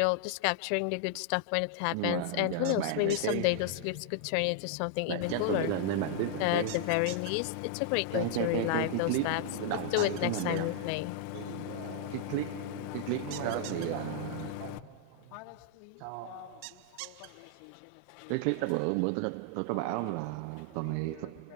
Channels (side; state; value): both; different; correlation 0.00